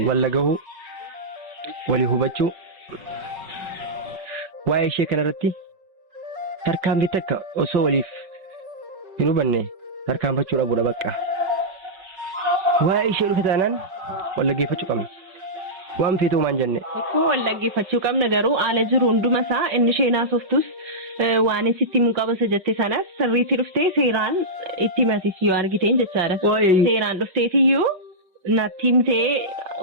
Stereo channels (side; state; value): left; late; 5.3 ms